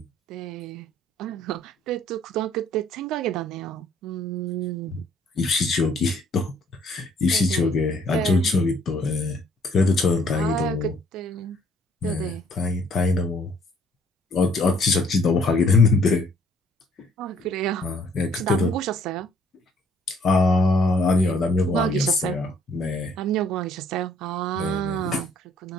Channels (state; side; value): normal; both; correlation 0.63